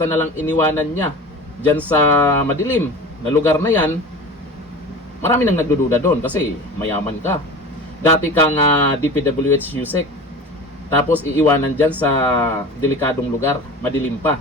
na lang iniwanan niya dyan sa madilim na lugar na yan, marami nang nagdududa doon kasi mayaman ka. Dati kang DPWH Yusek, tapos iiwanan dyan sa delikadong lugar, madilim pa.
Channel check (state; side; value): normal; both; correlation 0.35